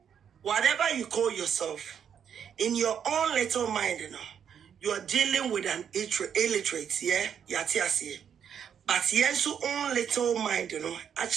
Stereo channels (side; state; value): left; quieter; 8.2 dB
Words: whatever you call yourself, in your own little mind, you are dealing with an illiterate, yeah, yatiasi. But yes, your own little mind,